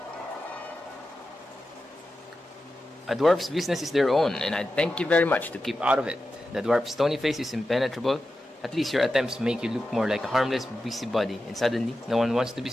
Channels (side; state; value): both; normal; correlation 0.92